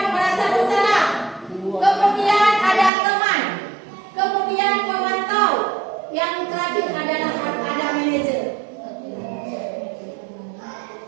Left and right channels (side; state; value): left; drops out; at 2.9 s